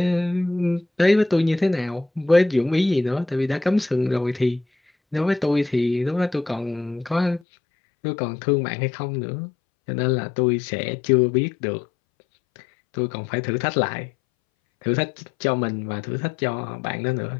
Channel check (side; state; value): right; drops out; at 7.4 s